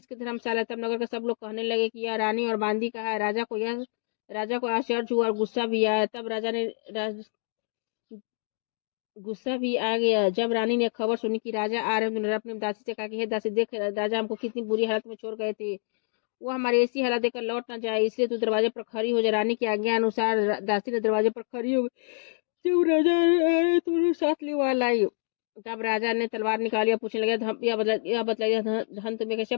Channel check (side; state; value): right; silent; digital silence